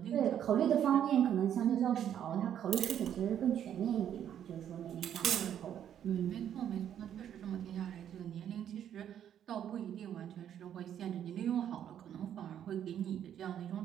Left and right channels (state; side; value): quieter; left; 9.8 dB